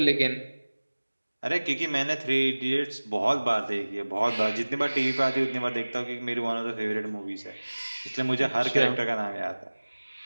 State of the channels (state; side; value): inverted; both; correlation -1.00